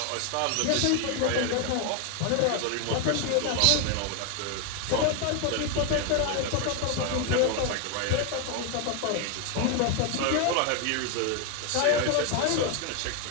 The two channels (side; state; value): both; different; correlation 0.01